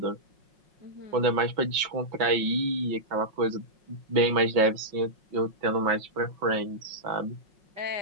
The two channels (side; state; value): left; late; 5.5 ms